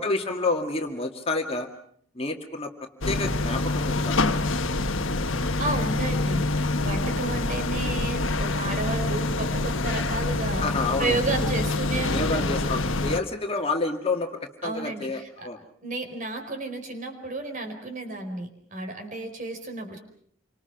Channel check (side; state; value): both; normal; correlation 0.38